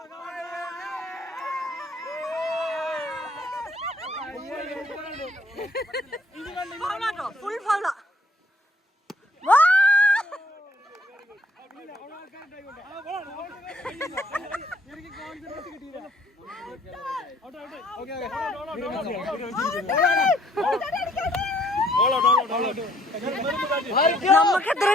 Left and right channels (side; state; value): both; normal; correlation 0.63